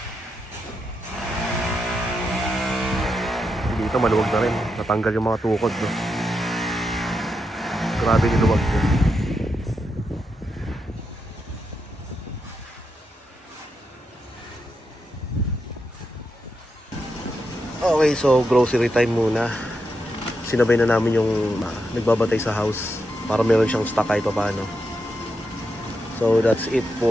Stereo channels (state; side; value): normal; both; correlation 0.84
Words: Dito maluwag na rin, natanggal yung mga tukod, no? Grabe niluwag yun. Okay, so grocery time muna. Sinabay na namin yung nagbabantay sa house para meron siyang stock kahit pa paano. So that's it